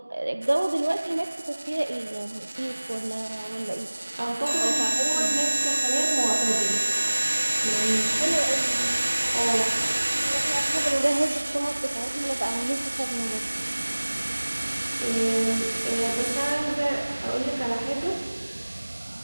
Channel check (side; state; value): both; inverted; correlation -1.00